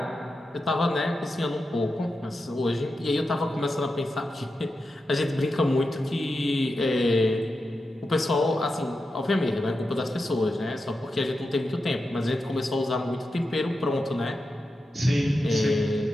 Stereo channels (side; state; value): both; normal; correlation 0.90